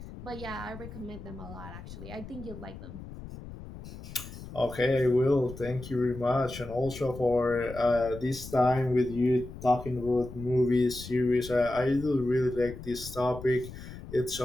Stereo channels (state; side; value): noise; left; rumble, 13 dB below the sound